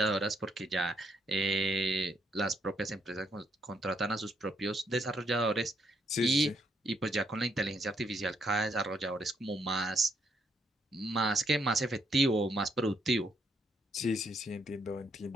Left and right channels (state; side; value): normal; both; correlation 0.74